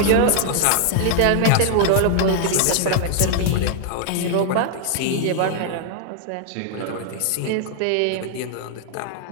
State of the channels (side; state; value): both; different; correlation 0.00